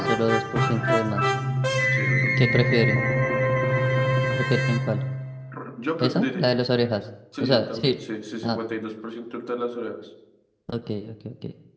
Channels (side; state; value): both; identical; correlation 1.00